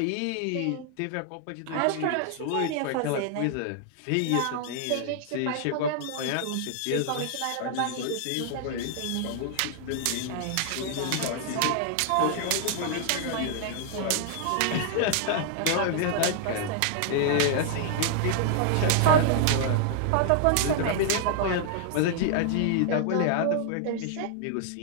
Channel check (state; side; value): different; both; correlation 0.00